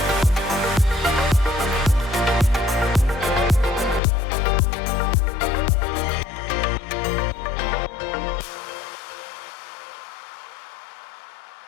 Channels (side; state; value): right; drops out; at 4.0 s